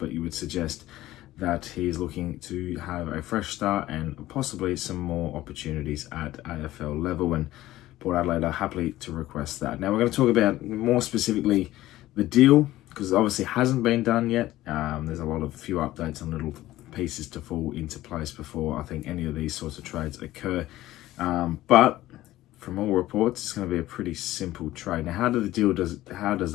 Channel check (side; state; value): right; quieter; 15.7 dB